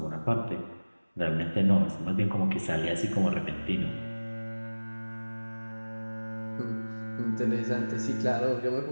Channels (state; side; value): inverted; both; correlation -1.00